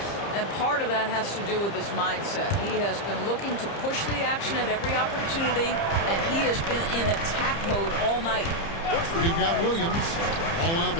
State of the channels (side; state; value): right; late; 30 ms